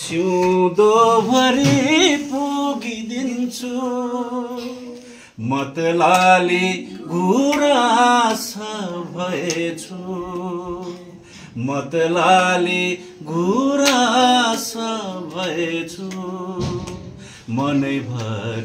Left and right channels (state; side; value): identical; both; correlation 1.00